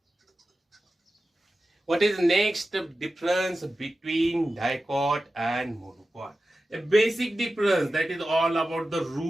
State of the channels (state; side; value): normal; both; correlation 0.94